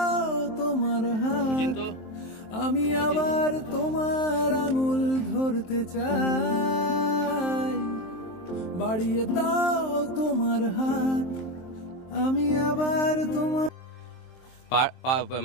তোমার হাত, আমি আবার তোমার আঙুল ধরতে চাই। বাড়িয়ে দাও তোমার হাত, আমি আবার তোমার।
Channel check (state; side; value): late; right; 23 ms